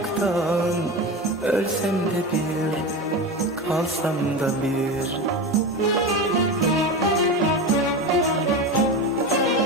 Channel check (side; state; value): both; normal; correlation 0.23